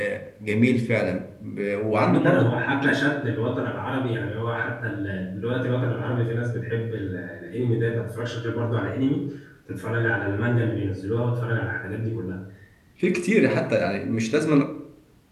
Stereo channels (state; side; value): identical; both; correlation 1.00